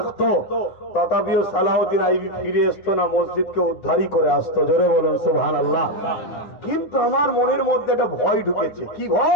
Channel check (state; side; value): late; right; 10 ms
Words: তথাপিও সালাউদ্দিন আইবি ফিরে আসতো না, মসজিদকে উদ্ধারই করে আসতো, জোরে বলুন সুবহানাল্লাহ। কিন্তু আমার মনের মধ্যে একটা ভয় ঢুকেছে। কি